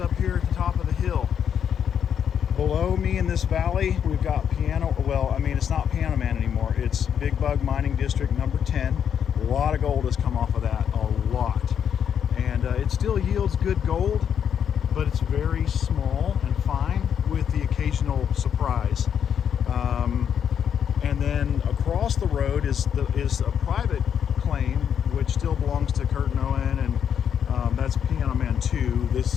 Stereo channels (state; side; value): quieter; right; 8.3 dB